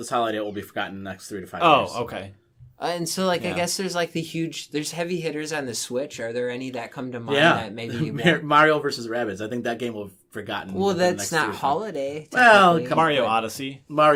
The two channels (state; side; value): identical; both; correlation 1.00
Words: holiday will be forgotten in the next 3 to 5 years. Oh, okay. And so, like, Yeah. I guess there's, like, there's heavy hitters on the Switch. Are there any that come to mind Yeah. that maybe you won't? Mario versus Rabbids. I think that game will be forgotten. Well, within the that's next 3 not to 5 holiday. Well, technically, Mario but- Odyssey.